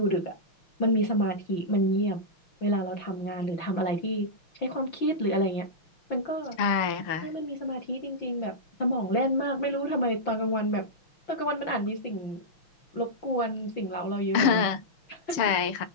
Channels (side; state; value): right; late; 6.7 ms